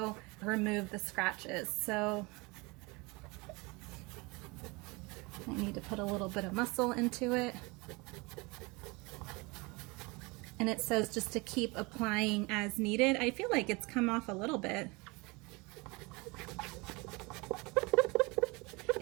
remove the scratches. So I need to put a little bit of muscle into it. And it says just to keep applying as needed. I feel like it's come off a little bit.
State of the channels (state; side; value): quieter; left; 26.1 dB